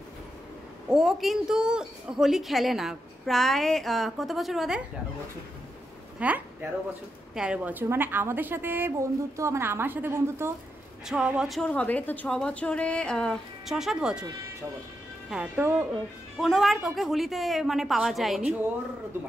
ও কিন্তু হোলি খেলে না প্রায় কত বছর বাদে? 13 বছর। হ্যাঁ, 13 বছর। মানে আমাদের সাথে বন্ধুত্ব, মানে আমার সাথে বন্ধুত্ব 6 বছর হবে। তো 6 বছরে 6-7 বছর। হ্যাঁ, তো কোনোবার ওকে হোলিতে মানে পাওয়া যায়নি। 2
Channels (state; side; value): normal; both; correlation 0.85